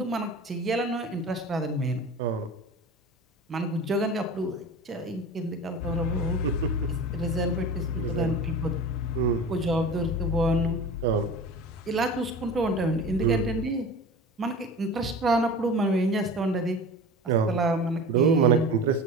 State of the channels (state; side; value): normal; both; correlation 0.35